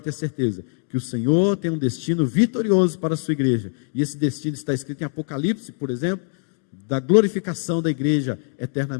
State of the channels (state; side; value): silent; right; 61 dB below the other